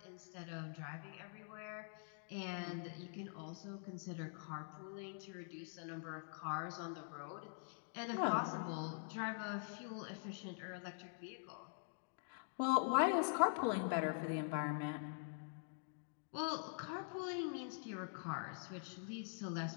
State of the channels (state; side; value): silent; right; digital silence